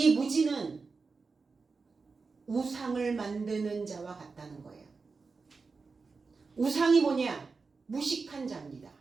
무지는 우상을 만드는 자와 같다는 거예요. 우상이 뭐냐? 무식한 자입니다.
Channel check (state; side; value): quieter; left; 4.5 dB